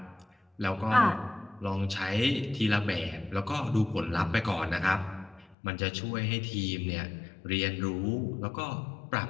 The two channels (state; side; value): drops out; right; at 5.6 s